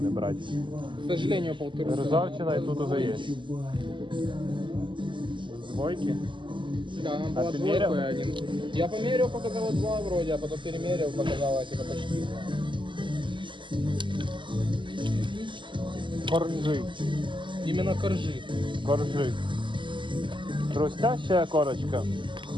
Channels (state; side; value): late; left; 0.24 ms